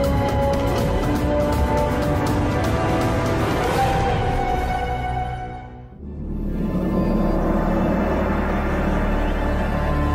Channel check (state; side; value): identical; both; correlation 1.00